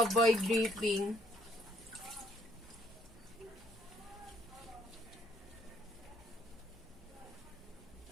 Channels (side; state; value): right; noise; hum, 25 dB below the sound